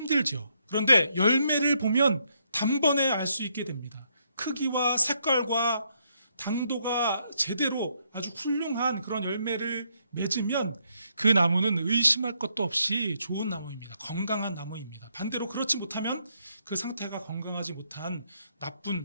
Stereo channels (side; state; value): both; inverted; correlation -0.75